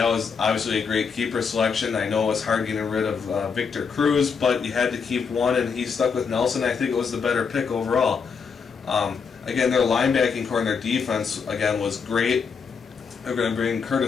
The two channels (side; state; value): right; quieter; 5.8 dB